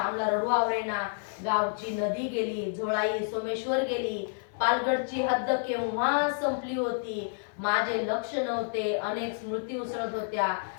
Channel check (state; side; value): silent; right; 58 dB below the other